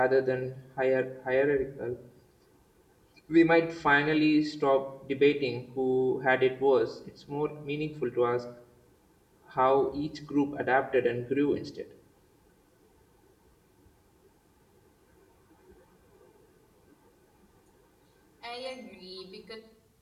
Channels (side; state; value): both; identical; correlation 1.00